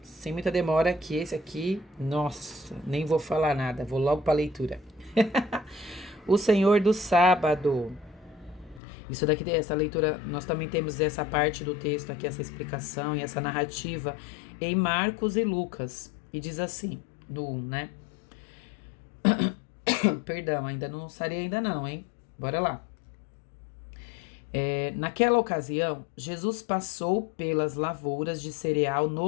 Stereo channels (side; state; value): right; drops out; at 8.8 s